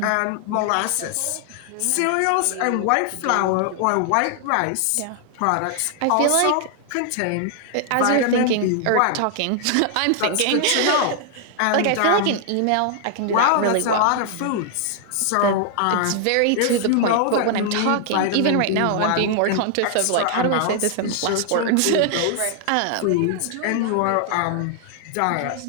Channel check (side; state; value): both; different; correlation 0.00